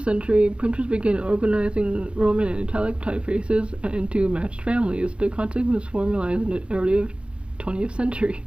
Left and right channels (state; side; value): late; left; 0.058 ms